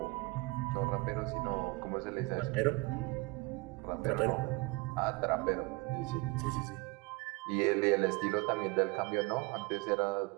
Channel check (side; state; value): left; quieter; 24.3 dB